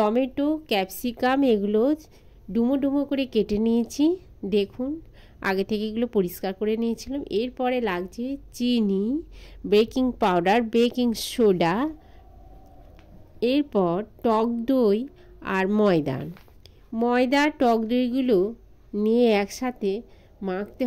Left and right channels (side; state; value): both; identical; correlation 1.00